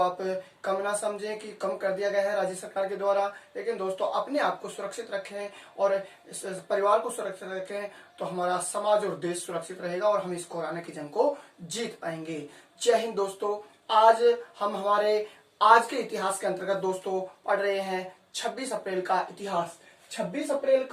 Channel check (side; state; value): both; identical; correlation 1.00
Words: कम ना समझें कि कम कर दिया गया है राज्य सरकार के द्वारा। लेकिन दोस्तों, अपने आप को सुरक्षित रखें और इस परिवार को सुरक्षित रखें तो हमारा समाज और देश सुरक्षित रहेगा और हम इस कोरोना की जंग को जीत पाएंगे। जय हिंद दोस्तों। आज हम हमारे आज के इतिहास के अंतर्गत दोस्तों पढ़ रहे हैं 26 अप्रैल का इतिहास। 26 अप्रैल